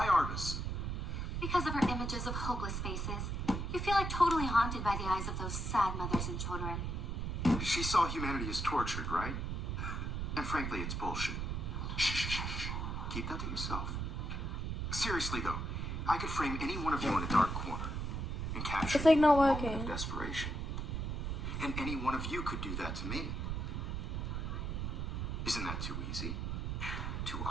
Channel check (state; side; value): noise; right; rumble, 2 dB below the sound